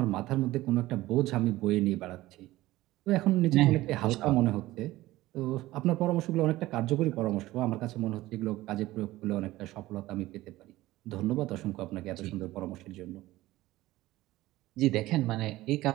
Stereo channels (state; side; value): quieter; left; 17.2 dB